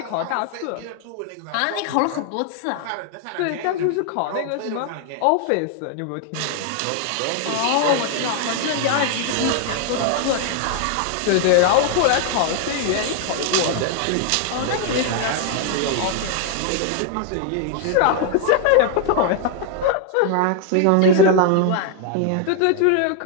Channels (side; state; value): both; different; correlation 0.00